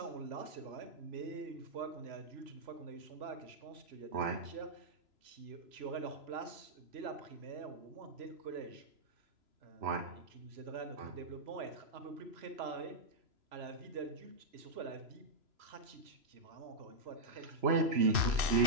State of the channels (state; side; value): late; left; 3.0 ms